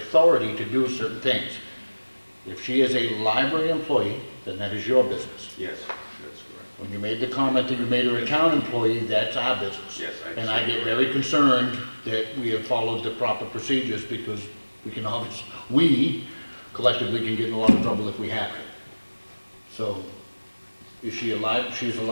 to do certain things. If she is a library employee, then that is your business. Yes, that's correct. When you made the comment that you made her a town employee, that's our business. Yes, I And I get very concerned that we have followed the proper procedures because we collectively can get in a lot of trouble if we haven't. So, is she she's a library She is a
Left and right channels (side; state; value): both; inverted; correlation -1.00